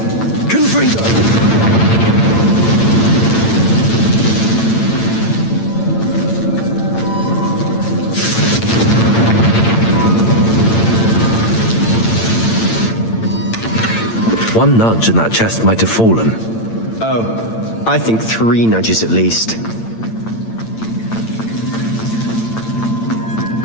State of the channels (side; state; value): right; late; 8.9 ms